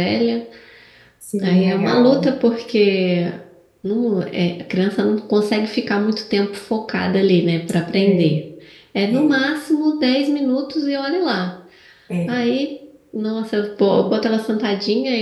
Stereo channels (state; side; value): identical; both; correlation 1.00